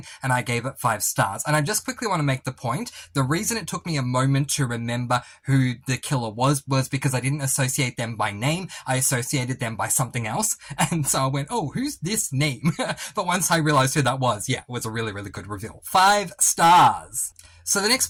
and I gave it 5 stars. And I just quickly want to make the point, the reason it took me a moment to remember who the killer was because I didn't associate them by name, I associated them by something else, and so I went, oh, who's this name? But once I realized who that was, yeah, it was a really, really good reveal. 5 stars. So the next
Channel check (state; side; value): identical; both; correlation 1.00